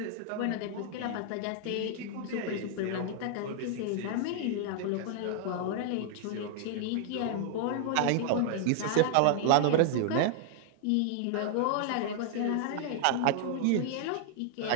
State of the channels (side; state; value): both; different; correlation -0.01